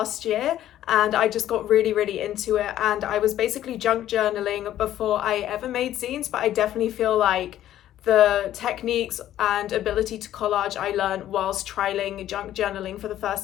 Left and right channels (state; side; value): quieter; right; 12.4 dB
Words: year, and I just got really into it, and I was basically junk journaling before I ever made zines, but I definitely feel like the techniques and ability to collage I learned whilst trialing junk journaling for the